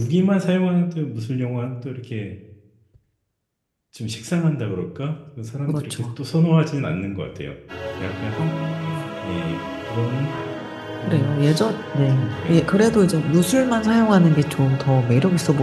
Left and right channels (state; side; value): identical; both; correlation 1.00